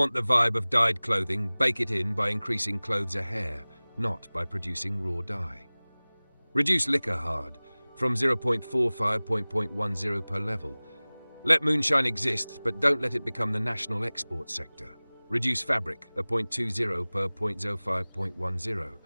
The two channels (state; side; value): inverted; both; correlation -1.00